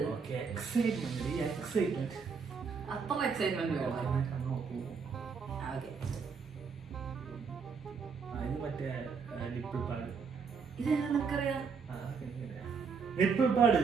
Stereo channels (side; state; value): left; quieter; 5.6 dB